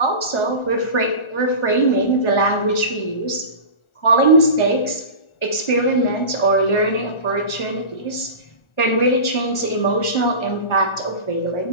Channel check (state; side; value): late; right; 1.4 ms